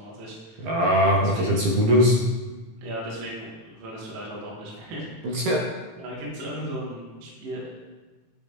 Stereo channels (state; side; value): late; left; 18 ms